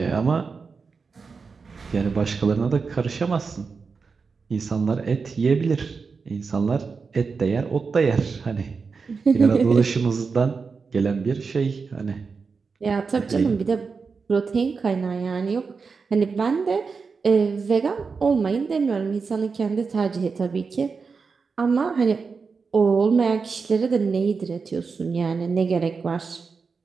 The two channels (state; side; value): quieter; left; 5.0 dB